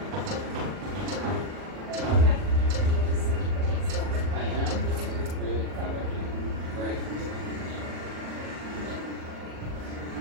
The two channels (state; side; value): late; left; 40 ms